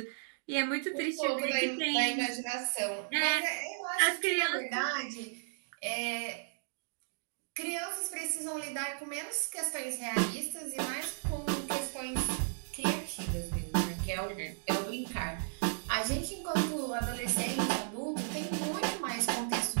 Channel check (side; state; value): left; silent; digital silence